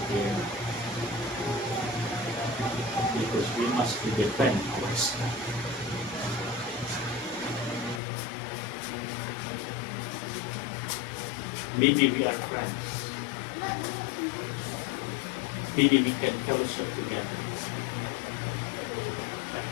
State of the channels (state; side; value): drops out; right; at 8.0 s